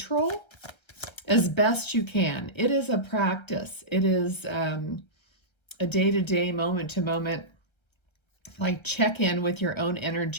as best you can. It is a practice. It is a day-to-day, moment-to-moment, like check in with your own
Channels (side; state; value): right; late; 1.3 ms